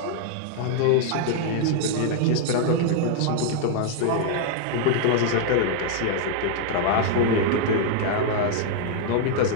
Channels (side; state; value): both; different; correlation 0.00